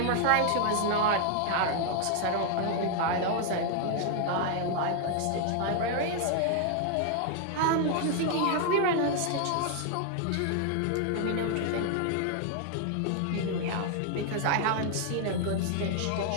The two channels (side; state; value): both; different; correlation 0.00